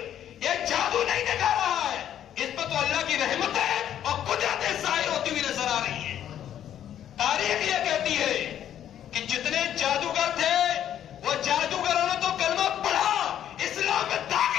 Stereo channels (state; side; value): quieter; right; 10.5 dB